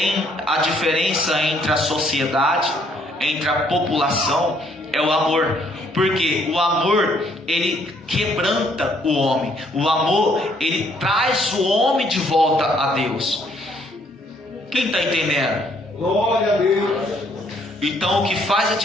diferença entre a sociedade entre a população é o amor. Porque o amor, ele quebranta o homem. O amor, ele traz o homem de volta a Deus. Quem está entendendo? Glória a Deus. Então o que faz a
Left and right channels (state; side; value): normal; both; correlation 0.67